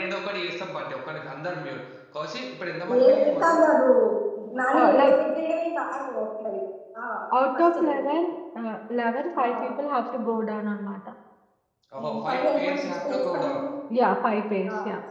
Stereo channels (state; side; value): identical; both; correlation 1.00